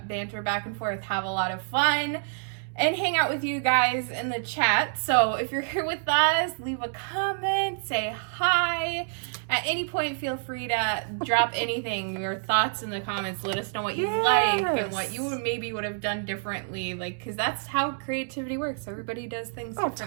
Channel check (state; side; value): silent; left; digital silence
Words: banter back and forth, have a lot of fun, and hang out with you guys in the chat. So if you're here with us, leave a comment, say hi. At any point, feel free to drop anything, your thoughts in the comments. Let us know what you like and what you maybe would have done differently. Like, because that's how creativity works. Everybody does things differently.